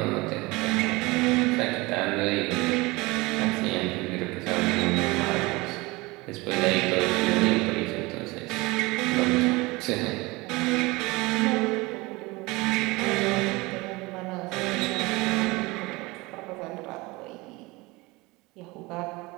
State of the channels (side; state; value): left; quieter; 23.1 dB